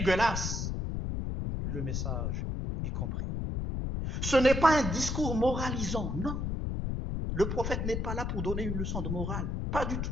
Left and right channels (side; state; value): left; noise; rumble, 1 dB below the sound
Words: Le message est compris. Ce n'est pas un discours moralisant, non. Le prophète n'est pas là pour donner une leçon de morale, pas du